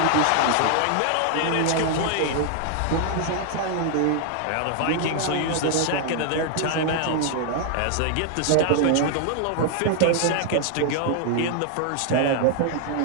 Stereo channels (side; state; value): both; different; correlation 0.00